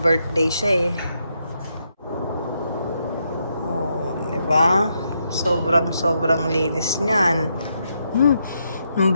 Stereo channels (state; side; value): inverted; both; correlation -0.80